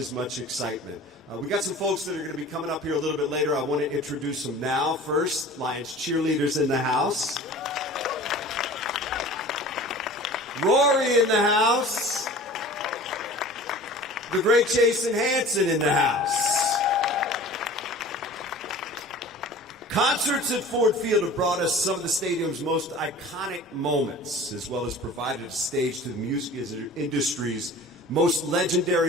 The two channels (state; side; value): normal; both; correlation 0.42